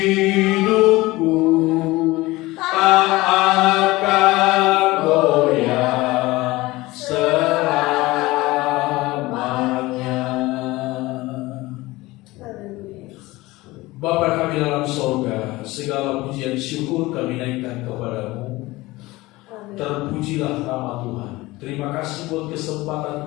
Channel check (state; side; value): quieter; right; 20.1 dB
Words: tak akan goyah selamanya. Bapa kami dalam sorga, segala pujian syukur kami naikkan kepada-Mu. Terpujilah nama Tuhan. Terima kasih buat